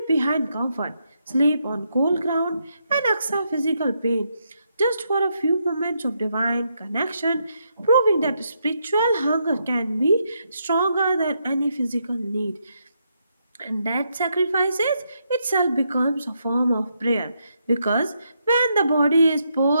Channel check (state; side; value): inverted; both; correlation -0.79